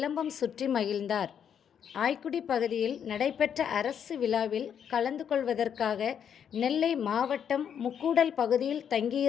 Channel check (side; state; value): right; quieter; 8.3 dB